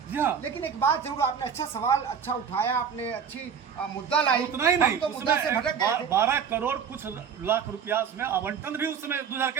लेकिन एक बात जरूर, आपने अच्छा सवाल अच्छा उठाया, आपने अच्छी मुद्दा लाई। उतना ही नहीं, तो मुद्दा से भटक गए थे। 12 करोड़ कुछ लाख रुपया उसमें आवंटन भी उस समय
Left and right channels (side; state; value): left; quieter; 7.3 dB